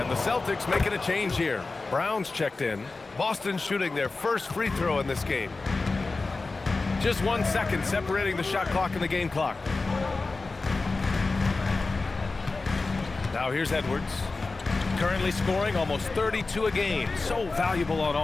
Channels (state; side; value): quieter; right; 3.7 dB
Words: the Celtics making a change here. Brown's checked in. Boston shooting their first free throw in this game. Just 1 second separating the shot clock and the game clock. Now here's Edwards. Currently scoring almost 32 a game. So valuable on